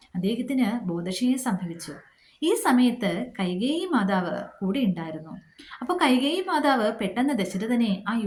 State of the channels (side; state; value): both; identical; correlation 1.00